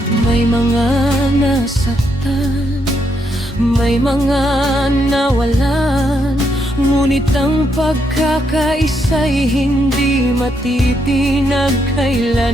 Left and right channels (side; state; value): both; normal; correlation 0.77